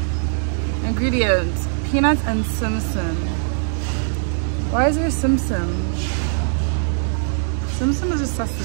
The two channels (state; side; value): silent; left; digital silence